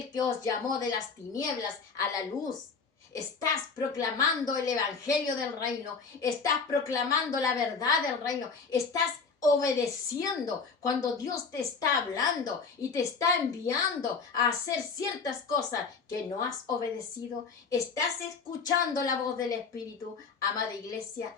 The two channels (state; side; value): quieter; right; 5.1 dB